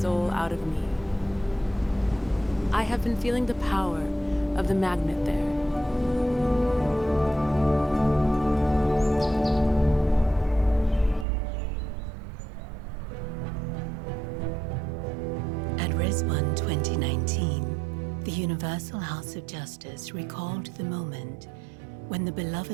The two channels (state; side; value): drops out; left; at 11.2 s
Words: out of me. I have been feeling the power of the magnet there. At Rizwan 2019, the Universal House of Justice recalled the moment when the